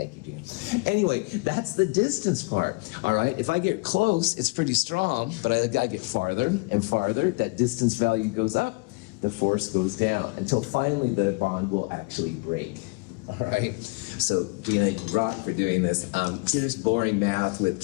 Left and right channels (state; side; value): quieter; right; 27.7 dB